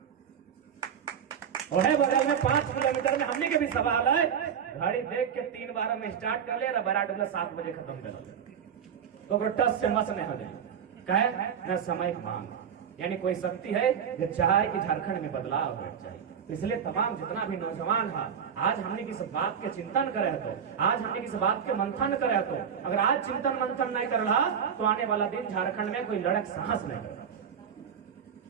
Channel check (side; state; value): left; quieter; 7.9 dB